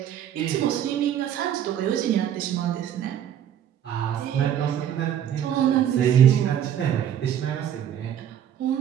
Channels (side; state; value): left; quieter; 10.0 dB